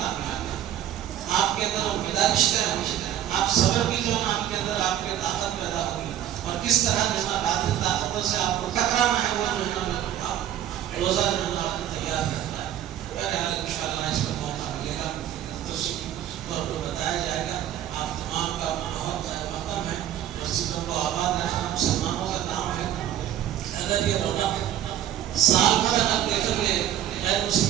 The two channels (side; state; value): left; quieter; 11.4 dB